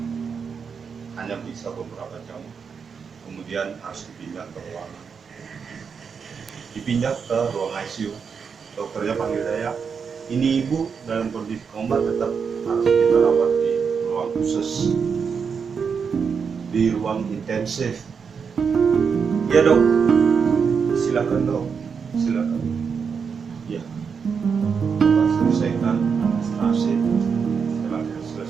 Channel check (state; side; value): quieter; left; 6.1 dB